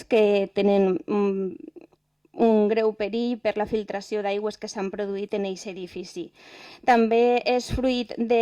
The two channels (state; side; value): identical; both; correlation 1.00